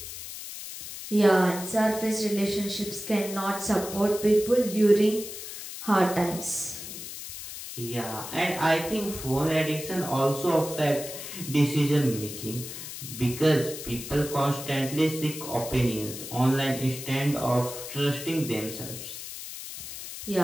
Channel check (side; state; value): left; noise; hiss, 10 dB below the sound